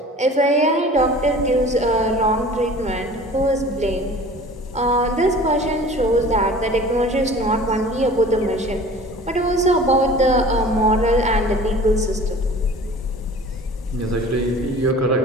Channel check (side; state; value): both; normal; correlation 0.44